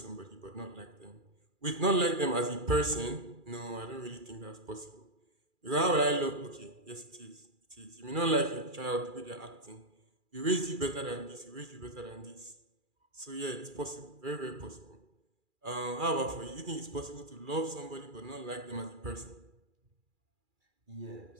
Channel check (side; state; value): left; late; 2.4 ms